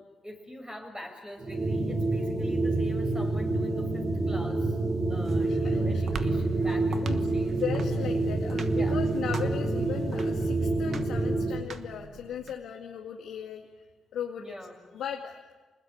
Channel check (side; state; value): both; normal; correlation 0.85